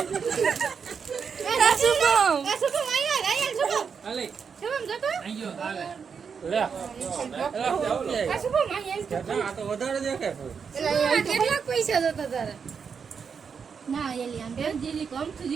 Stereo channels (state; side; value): quieter; left; 6.3 dB